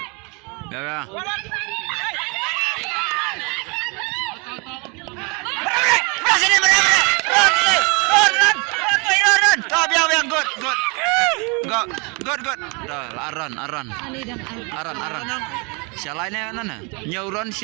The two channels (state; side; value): quieter; left; 31.3 dB